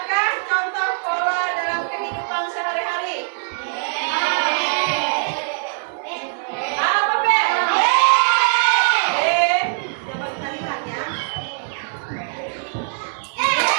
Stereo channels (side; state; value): left; silent; 62 dB below the other